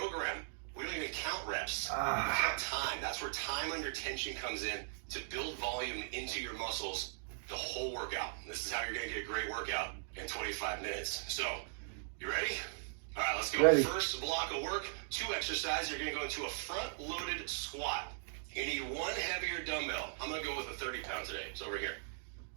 we don't even count reps. We count time. That's where time under tension comes in to build volume into your muscles the whole workout. This is how you're going to get a great workout in 25 minutes. So, you ready? All right, let's go. Ready. First block of work, 2 exercises. You're going to go into a front-loaded squat. You need 1 heavier dumbbell. I'm going to go with a 30-pound today. It's over here.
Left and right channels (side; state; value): left; silent; digital silence